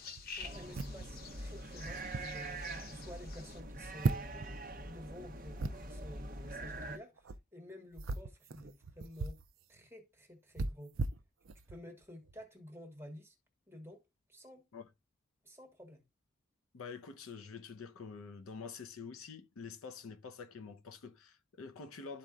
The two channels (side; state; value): both; normal; correlation 0.67